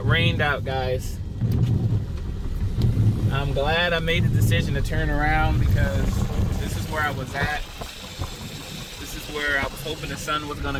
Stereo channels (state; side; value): identical; both; correlation 1.00